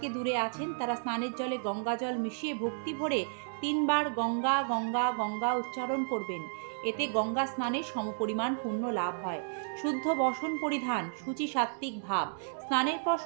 দূরে আছেন তারা স্নানের জলে গঙ্গা জল মিশিয়ে ভক্তি ভরে 3 বার গঙ্গা গঙ্গা গঙ্গা উচ্চারণ করবেন। এতে গঙ্গা স্নানের সমপরিমাণ পুণ্য লাভ হয়। শুদ্ধ বসন পরিধান, শুচি সাত্ত্বিক ভাব। স্নানের পর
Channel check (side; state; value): left; silent; digital silence